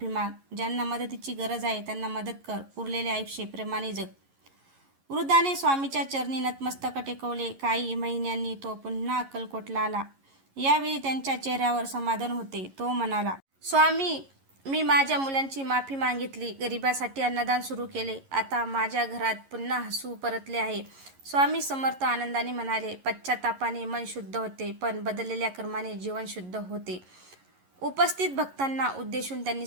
माग. ज्यांना मदतीची गरज आहे त्यांना मदत कर. उरलेले आयुष्य प्रेमाने जग. वृद्धाने स्वामीच्या चरणी नतमस्तक टेकवले. काही महिन्यांनी तो पुन्हा अक्कलकोटला आला. यावेळी त्यांच्या चेहऱ्यावर समाधान होते. तो म्हणाला, स्वामी, मी माझ्या मुलांची माफी मागितली, गरिबासाठी अन्नदान सुरू केले. आता माझ्या घरात पुन्हा हसू परतले आहे. स्वामी समर्थ आनंदाने म्हणाले, पश्चातापाने मन शुद्ध होते, पण बदललेल्या कर्माने जीवन शुद्ध होते. उपस्थित भक्तांना उद्देशून त्यांनी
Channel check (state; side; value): late; left; 11 ms